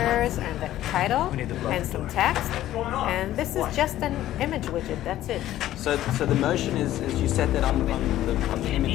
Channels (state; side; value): quieter; right; 13.6 dB